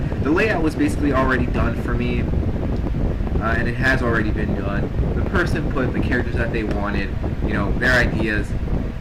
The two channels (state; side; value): identical; both; correlation 1.00